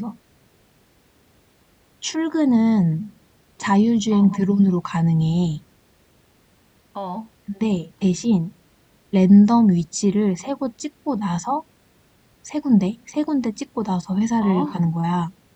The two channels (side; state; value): both; identical; correlation 1.00